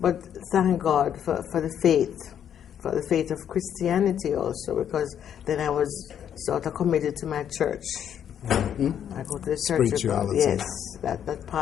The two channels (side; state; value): right; quieter; 9.3 dB